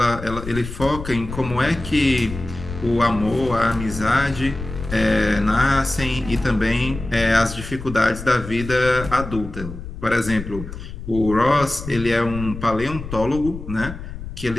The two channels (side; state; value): left; noise; rumble, 10 dB below the sound